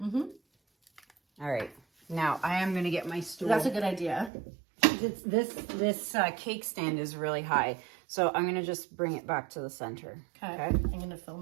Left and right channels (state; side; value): drops out; left; at 4.3 s